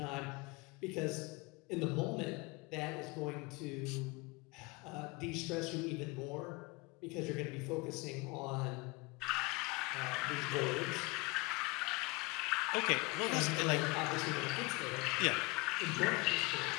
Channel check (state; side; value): quieter; right; 24.7 dB